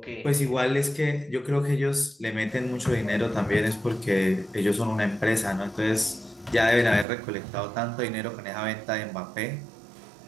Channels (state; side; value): drops out; left; at 7.1 s